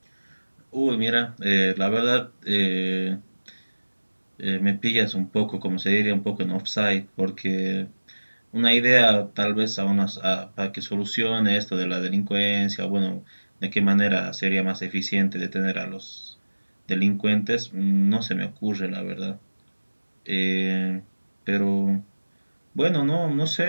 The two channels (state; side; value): inverted; both; correlation -1.00